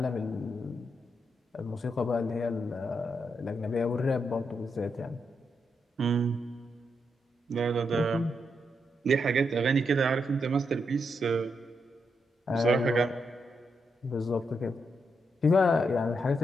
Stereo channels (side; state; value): both; normal; correlation 0.82